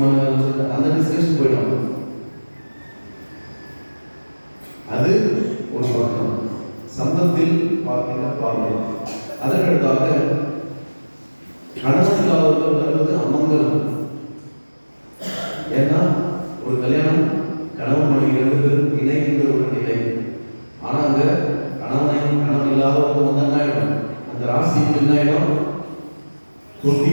வேலை சொல்லிட்டு அந்த டிஸ்கஷன் போயிடுவாங்க. அது ஒரு பக்கம் சம்பந்தத்தில் பார்க்கின்ற பார்வை. அதற்கடுத்தாக கணவன் இல்லாதவர்கள் வருவது அமங்கலம். ஏன்னா ஒரு கல்யாணம் கணவன் மனைவி 2 பேரும் இணைகின்ற ஒரு நிலை. ஆனால் அங்கே கணவன் இல்லாதவங்க வந்து என்ன ஆகிடும், அந்த ராசிக்கு என்ன ஆகிடும்,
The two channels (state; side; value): inverted; both; correlation -1.00